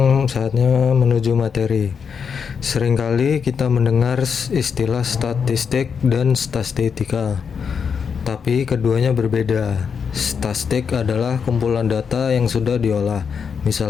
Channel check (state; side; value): quieter; right; 6.4 dB